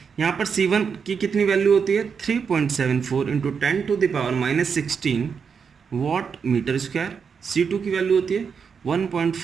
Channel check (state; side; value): quieter; left; 6.3 dB